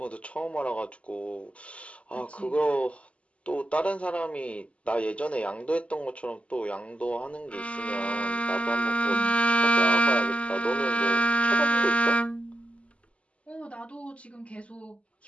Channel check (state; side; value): late; right; 0.061 ms